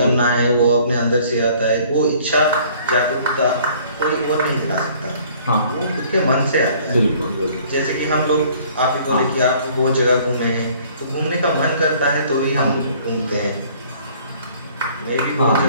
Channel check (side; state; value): both; inverted; correlation -0.56